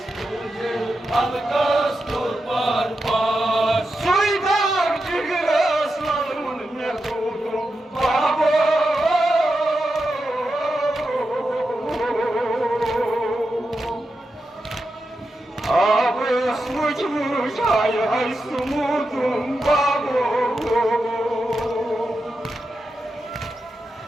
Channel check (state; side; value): normal; both; correlation 0.89